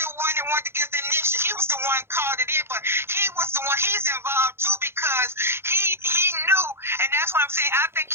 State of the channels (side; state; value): left; late; 0.12 ms